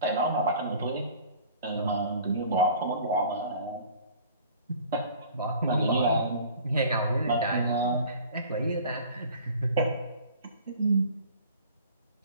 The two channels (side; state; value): both; inverted; correlation -0.47